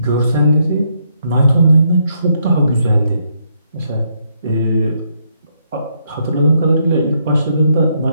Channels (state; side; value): inverted; both; correlation -0.75